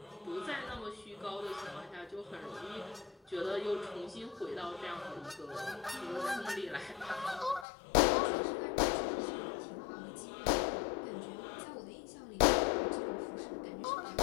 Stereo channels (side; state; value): right; drops out; at 7.7 s